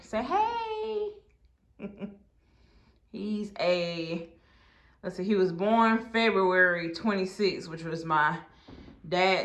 Say hey. Let's see, he was born February 26th, which was my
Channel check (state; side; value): identical; both; correlation 1.00